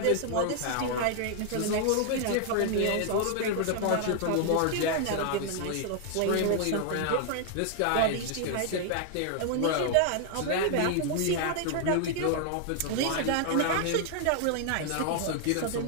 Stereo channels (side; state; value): both; different; correlation 0.00